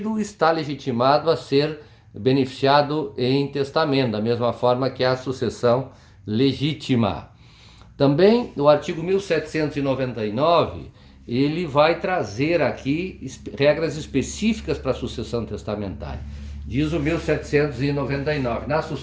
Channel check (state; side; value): identical; both; correlation 1.00